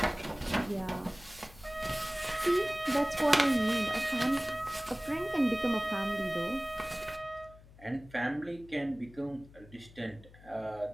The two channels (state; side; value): noise; left; hum, 22 dB below the sound